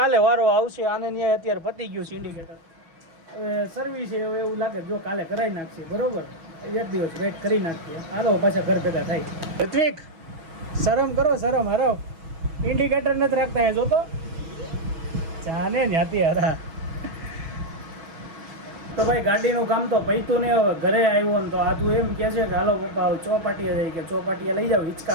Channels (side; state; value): left; late; 6.2 ms